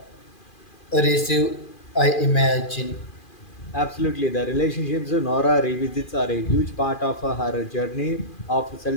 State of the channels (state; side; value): late; right; 2.4 ms